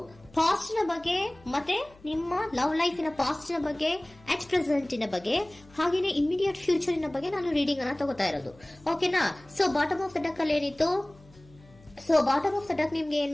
ಪಾಸ್ಟ್ ನ ಬಗ್ಗೆ ಮತ್ತೆ ನಿಮ್ಮ ಲವ್ ಲೈಫಿನ ಪಾಸ್ಟ್ ನ ಬಗ್ಗೆ, ಅಟ್ ಪ್ರೆಸೆಂಟಿನ ಬಗ್ಗೆ, ಹಾಗೇನೆ ಇಮಿಡಿಯೇಟ್ ಫ್ಯೂಚರಿನ ಬಗ್ಗೆ ನಾನು ರೀಡಿಂಗ್ ಅನ್ನ ತಗೋತಾ ಇರೋದು. ಓಕೆನಾ? So bottom of the duck ಅಲ್ಲಿ ಏನಿತ್ತು? So bottom of the duck ನಿಮ್ಗೆ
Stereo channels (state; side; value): noise; left; hum, 25 dB below the sound